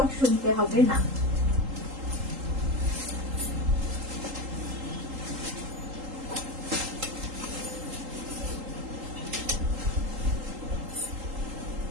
শুনতে হবে না।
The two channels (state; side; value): late; left; 3.8 ms